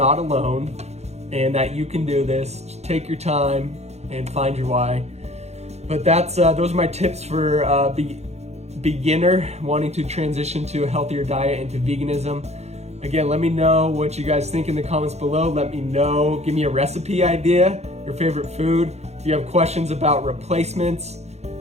alone and that you can do this. Just take your time and find your why. But those are my tips for beginner wanting to transition to a healthier diet and to veganism. Again, let me know what you guys think in the comments below. Let me know, give me a recipe idea, your favorite food. If you have questions about replacements,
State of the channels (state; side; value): late; left; 0.31 ms